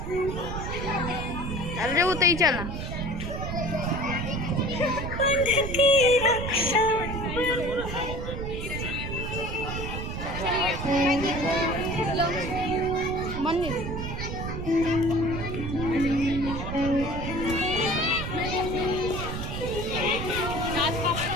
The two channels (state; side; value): noise; right; rumble, 5 dB below the sound